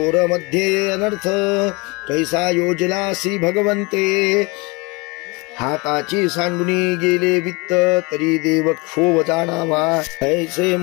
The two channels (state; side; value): quieter; right; 27.1 dB